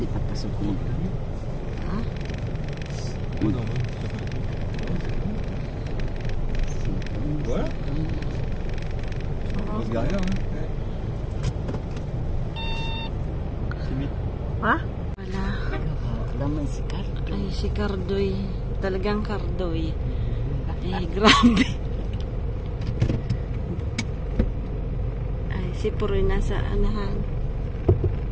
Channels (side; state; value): both; identical; correlation 1.00